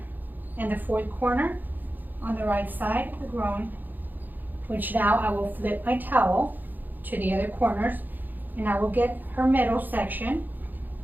and the 4th corner on the right side of the groin, which now I will flip my towel to the other corners, and I will get her middle section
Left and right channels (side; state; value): left; late; 0.087 ms